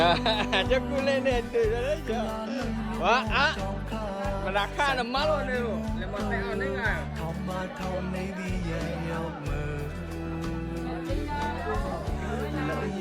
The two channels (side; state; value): both; identical; correlation 1.00